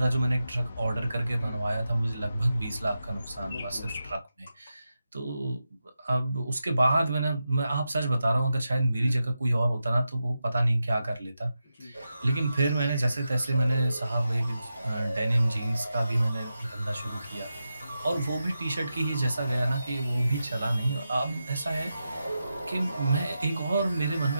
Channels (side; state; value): both; inverted; correlation -0.89